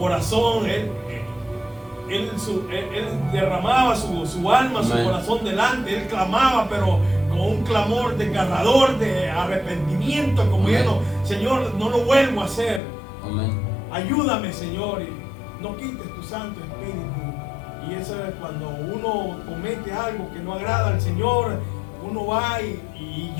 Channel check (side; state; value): right; drops out; at 12.8 s